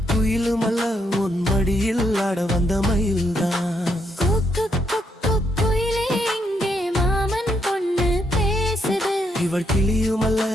குயிலுமல்ல உன் மடியில் ஆட வந்த மயில்தான் குயிலே இங்கே மாமன் பொண்ணு பேசுது இவள் கிளியுமல்ல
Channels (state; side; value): normal; both; correlation 0.77